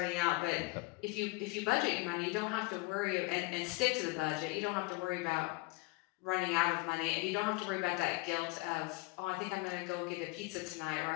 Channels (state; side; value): quieter; right; 26.3 dB